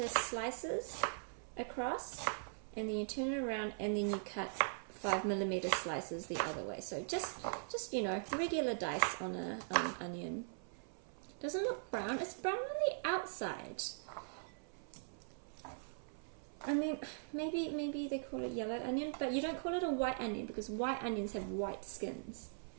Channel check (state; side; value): silent; left; 50 dB below the other